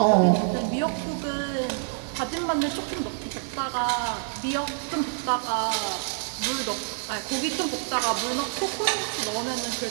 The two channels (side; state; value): left; silent; 60 dB below the other